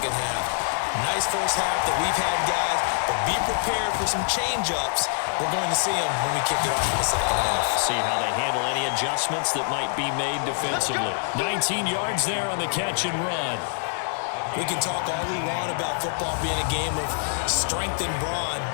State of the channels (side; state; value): right; silent; 58 dB below the other